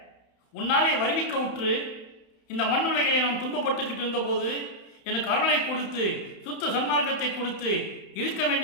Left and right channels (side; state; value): right; late; 31 ms